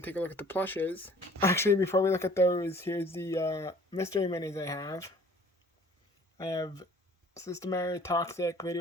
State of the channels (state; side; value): normal; both; correlation 0.52